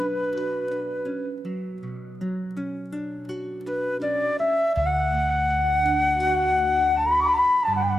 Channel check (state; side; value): normal; both; correlation 0.90